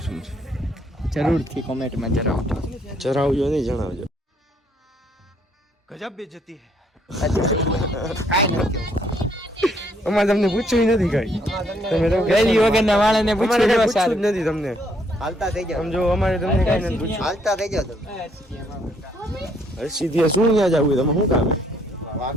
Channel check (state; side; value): normal; both; correlation 0.69